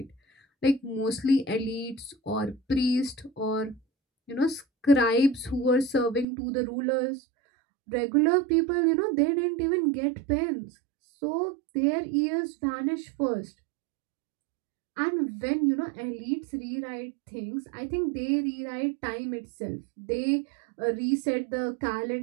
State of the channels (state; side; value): drops out; left; at 6.2 s